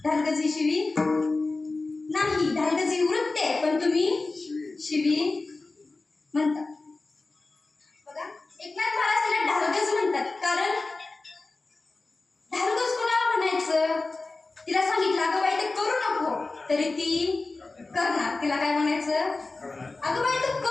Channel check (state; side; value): quieter; right; 3.5 dB